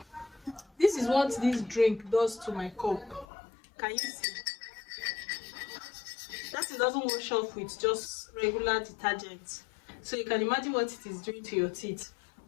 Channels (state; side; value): drops out; right; at 3.2 s